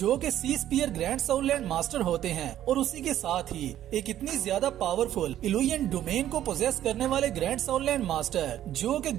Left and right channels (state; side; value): quieter; left; 12.0 dB